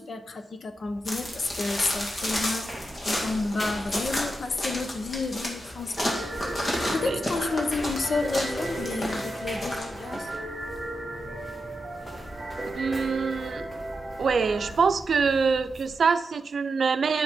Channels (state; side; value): normal; both; correlation 0.87